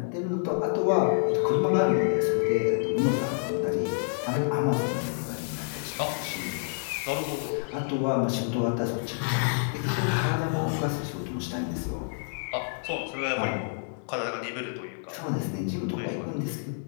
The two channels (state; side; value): silent; right; digital silence